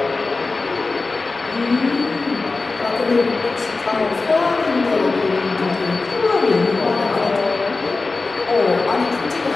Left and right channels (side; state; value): right; quieter; 3.7 dB